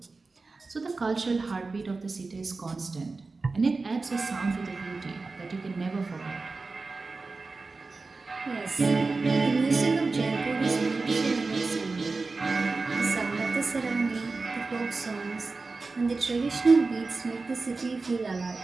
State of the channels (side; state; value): left; quieter; 3.8 dB